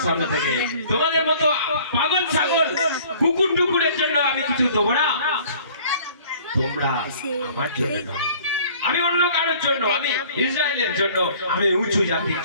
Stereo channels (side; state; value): both; inverted; correlation -0.52